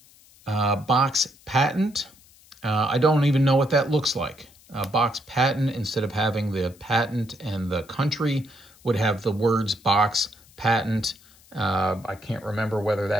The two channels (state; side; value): noise; left; hiss, 27 dB below the sound